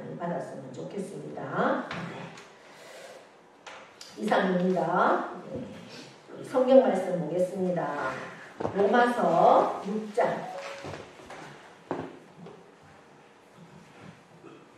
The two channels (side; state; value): both; identical; correlation 1.00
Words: 받았으면 좋겠습니다. 이상입니다. 성경 말씀 보겠습니다. 로마서 6장